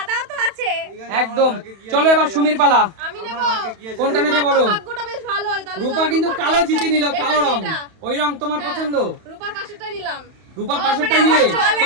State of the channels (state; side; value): late; left; 31 ms